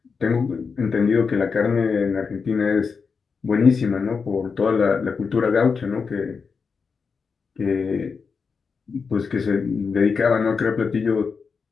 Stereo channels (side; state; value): right; quieter; 5.4 dB